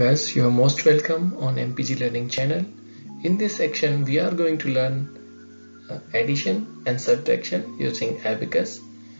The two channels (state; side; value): inverted; both; correlation -1.00